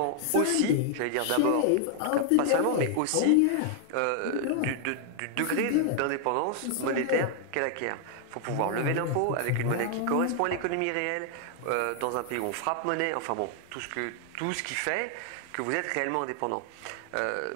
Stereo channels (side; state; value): both; different; correlation 0.00